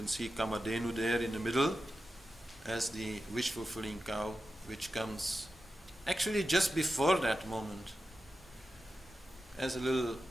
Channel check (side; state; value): both; normal; correlation 0.92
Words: see Kamadhenu there in the middle as the wish-fulfilling cow, which comes actually just before that moment as a little